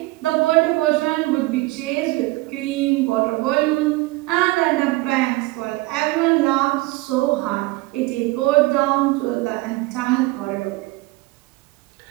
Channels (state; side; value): quieter; left; 21.3 dB